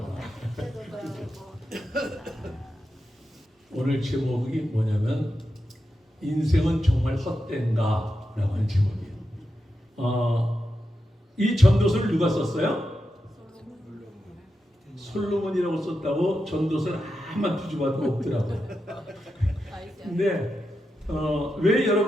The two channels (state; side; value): normal; both; correlation 0.88